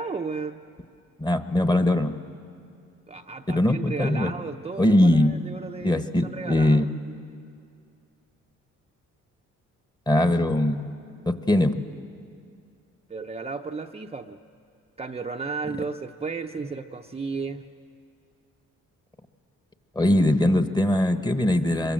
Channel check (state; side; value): normal; both; correlation 0.85